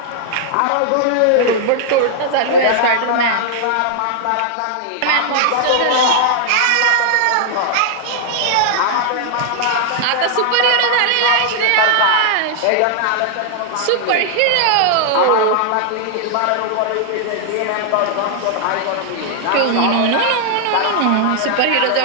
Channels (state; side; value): different; both; correlation 0.00